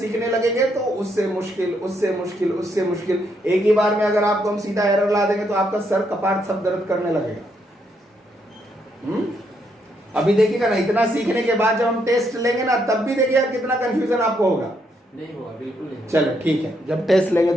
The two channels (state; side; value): normal; both; correlation 0.76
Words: लगेंगे तो उससे मुश्किल, उससे मुश्किल, उससे मुश्किल, एक ही बार में अगर आपको हम सीधा एरर ला देंगे तो आपका सर कपाट सब दर्द करने लगेगा। अभी देखिएगा ना, इतना सीखने के बाद जब हम टेस्ट लेंगे ना, तब भी देखिएगा कितना कंफ्यूजन आपको होगा। नहीं होगा, बिल्कुल नहीं। चलो ठीक है, जब टेस्ट लेंगे